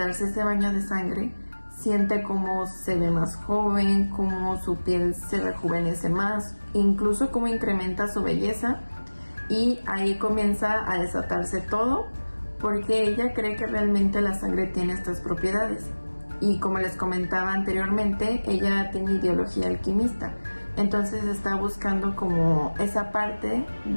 ese baño de sangre, siente cómo se ve más joven, cómo su piel se rejuvenece más, incluso cómo incrementa su belleza, y ahí comienza a desatarse todo, porque ella cree que realmente la sangre tiene estas propiedades. Y como les comentaba anteriormente, ella tiene ideología alquimista, entonces está buscando como esa parte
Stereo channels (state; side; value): inverted; both; correlation -1.00